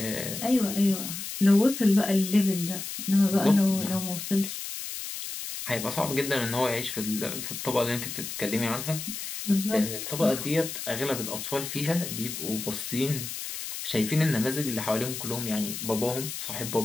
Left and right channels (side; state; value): left; noise; hiss, 7 dB below the sound